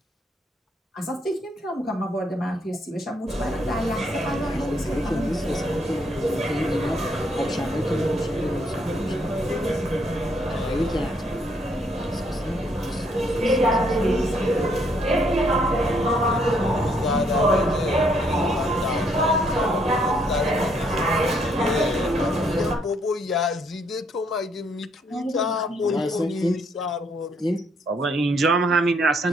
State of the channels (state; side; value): normal; both; correlation 0.70